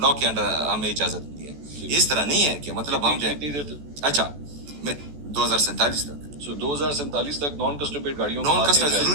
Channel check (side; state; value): left; late; 14 ms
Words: लॉ के अंडर हमें इजाजत मिली है। ये इस तरह नहीं है कि मतलब हम जो है, कितनी देर तक? अच्छा, मैं 2047 तक, सो 2047 तक नॉन कस्टम पेड गाड़ियों की नॉन बात कस्टम नहीं आएगी।